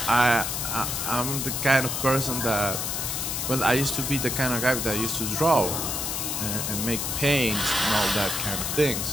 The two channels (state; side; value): noise; left; hiss, 2 dB below the sound